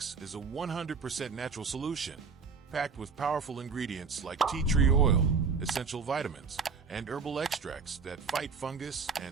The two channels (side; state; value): left; quieter; 5.2 dB